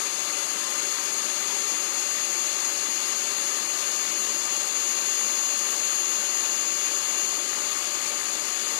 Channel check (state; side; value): silent; right; digital silence